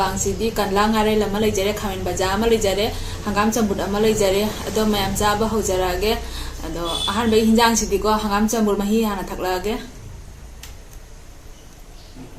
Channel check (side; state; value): both; identical; correlation 1.00